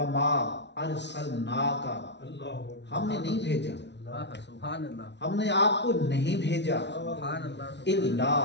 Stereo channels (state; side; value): late; right; 0.51 ms